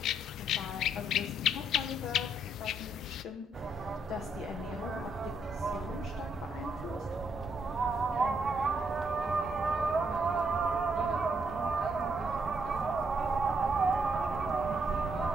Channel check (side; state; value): both; normal; correlation 0.74